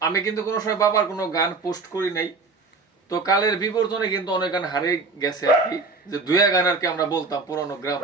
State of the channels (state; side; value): quieter; left; 4.0 dB